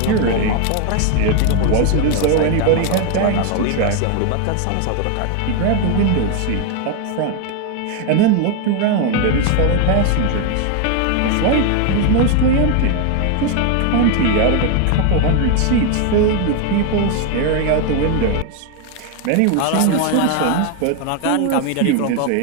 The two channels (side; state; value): both; different; correlation 0.01